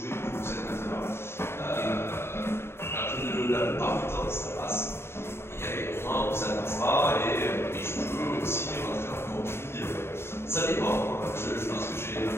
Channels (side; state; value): right; late; 0.12 ms